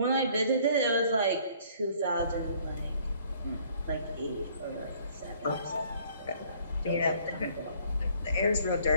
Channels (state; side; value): inverted; both; correlation -0.59